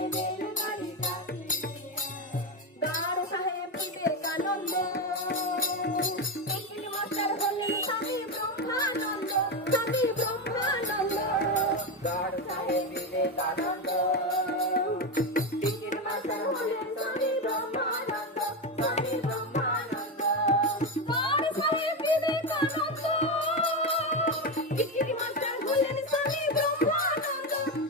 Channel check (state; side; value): normal; both; correlation 0.12